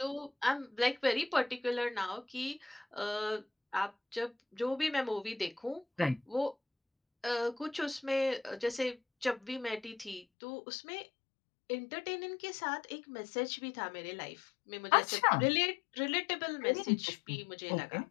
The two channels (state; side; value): drops out; right; at 10.2 s